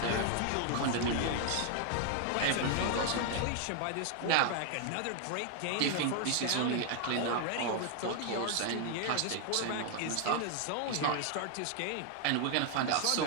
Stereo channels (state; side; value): different; both; correlation 0.00